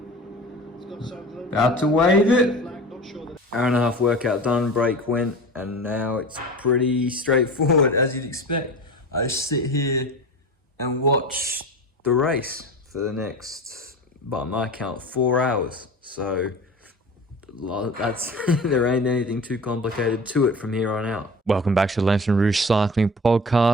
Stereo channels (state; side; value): normal; both; correlation 0.35